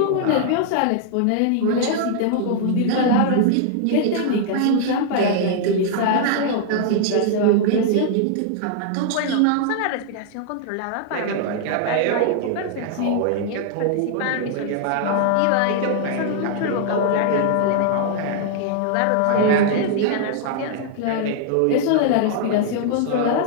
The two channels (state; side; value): different; both; correlation 0.00